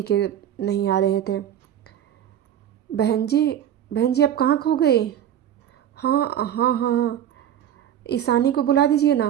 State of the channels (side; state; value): left; quieter; 10.5 dB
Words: के नहीं आ रहे थे। बहन जी आप कहाँ खो गई? हाँ हाँ हाँ हाँ, ईशानी को बुला दीजिए